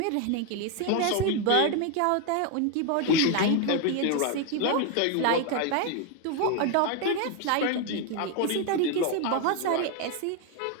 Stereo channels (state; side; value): different; both; correlation 0.01